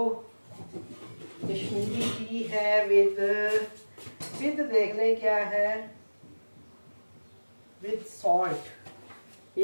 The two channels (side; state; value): both; inverted; correlation -1.00